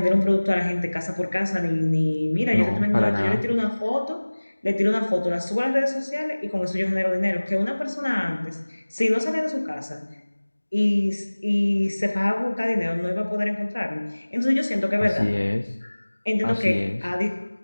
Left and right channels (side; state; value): both; inverted; correlation -1.00